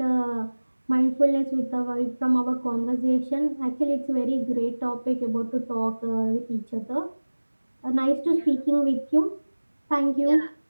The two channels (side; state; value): both; inverted; correlation -1.00